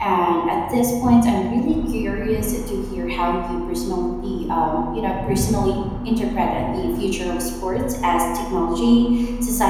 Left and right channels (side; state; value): both; identical; correlation 1.00